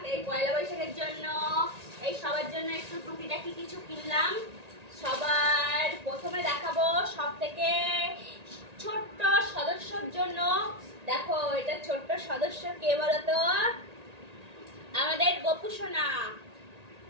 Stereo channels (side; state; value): left; late; 1.8 ms